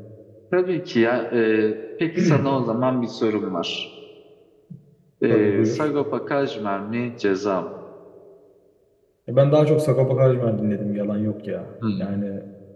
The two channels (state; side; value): identical; both; correlation 1.00